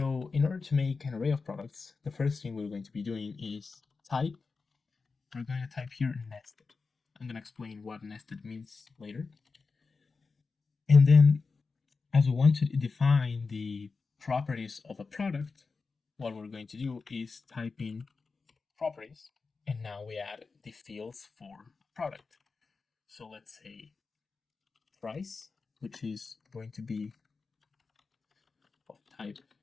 in order to make an array of products, the first thing we're going to be doing is type. We're going to type here nested. I'm going to explain what nested means later. And then, as we want to define the properties of a product, what we're going to do is type in properties, and now we add the fields for product. So let's say price, which is going to be of type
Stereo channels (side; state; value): right; quieter; 4.5 dB